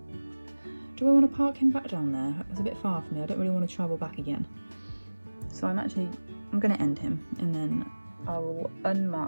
Do I want to park him back down there? It's a bit far for me. I don't really want to travel back again. So I'm going to end him, and then I will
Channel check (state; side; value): inverted; both; correlation -1.00